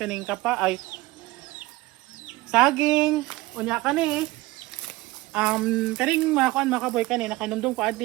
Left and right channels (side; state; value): left; quieter; 19.8 dB